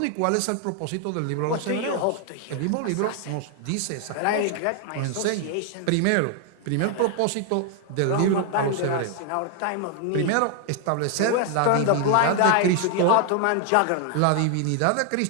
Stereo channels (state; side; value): different; both; correlation 0.00